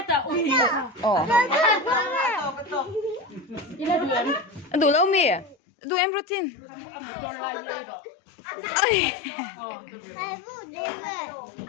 Đủ lâu mì. Đủ em protein.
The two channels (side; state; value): right; drops out; at 5.6 s